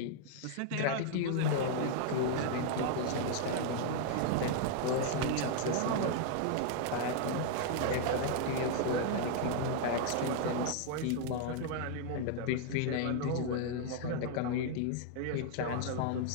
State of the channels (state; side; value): different; both; correlation 0.00